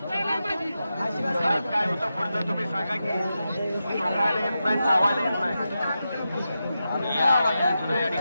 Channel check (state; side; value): inverted; both; correlation -0.89